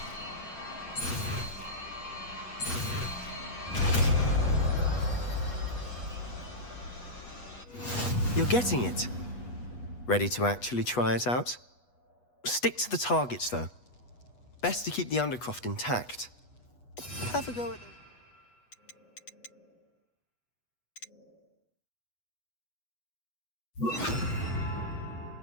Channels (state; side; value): late; right; 8.2 ms